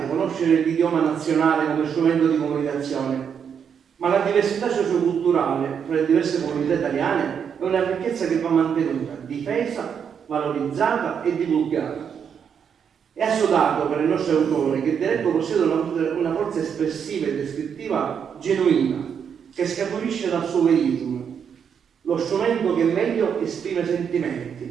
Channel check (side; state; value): left; quieter; 7.4 dB